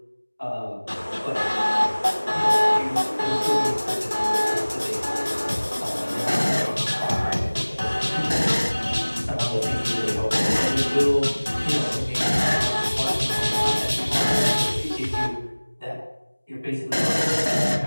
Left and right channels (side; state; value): both; inverted; correlation -1.00